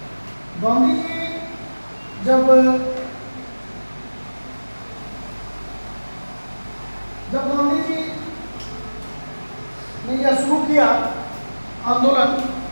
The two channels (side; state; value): both; inverted; correlation -1.00